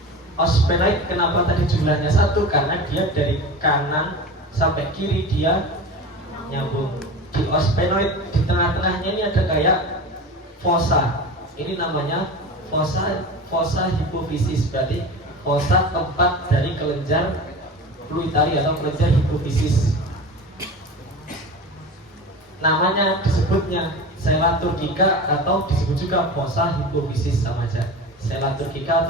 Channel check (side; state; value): both; normal; correlation 0.31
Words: Os sphenoid kenapa tadi jumlahnya satu? Karena dia dari kanan sampai kiri dia nyambung. Di os sphenoid di tengah-tengahnya ini ada kayak fossa. Ini namanya fossa hipofisis, berarti fossa tempat dari kelenjar fluitari atau kelenjar hipofisis. Namanya disebutnya sela turcica atau disebut juga fossa hipofisis, sama aja. Sela